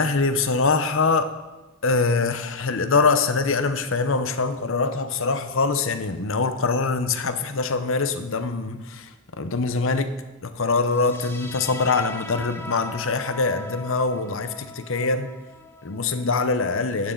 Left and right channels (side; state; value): right; quieter; 3.6 dB